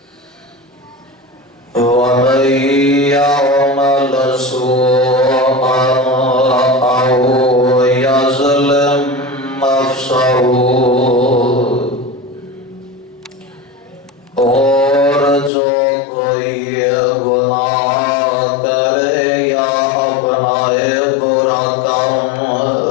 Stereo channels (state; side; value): drops out; right; at 15.5 s